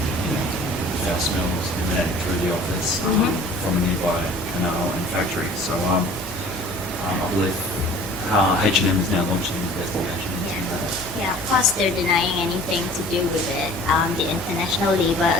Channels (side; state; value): both; normal; correlation 0.48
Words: foul smells emanating through the office from a nearby canal and factory. So I believe H&M is now launching an investigation into that. Yeah, of course they're denying anything to do with it. The International